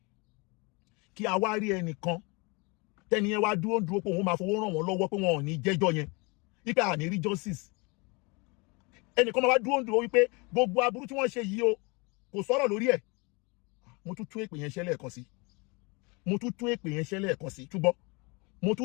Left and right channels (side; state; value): right; quieter; 28.8 dB